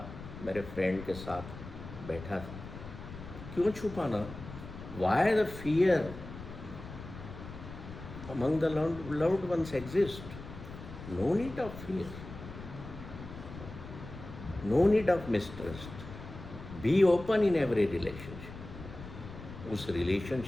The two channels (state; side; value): noise; left; rumble, 12 dB below the sound